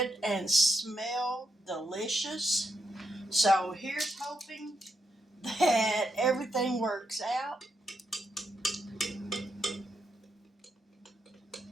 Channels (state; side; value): normal; both; correlation 0.81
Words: and smell delicious. So here's hoping that everything works out.